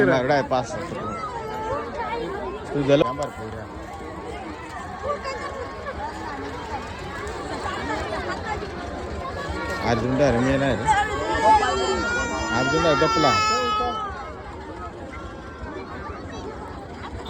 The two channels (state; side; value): identical; both; correlation 1.00